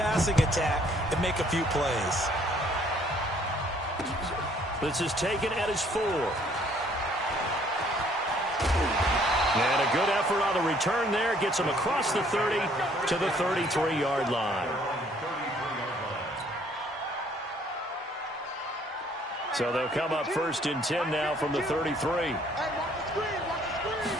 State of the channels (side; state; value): both; normal; correlation 0.62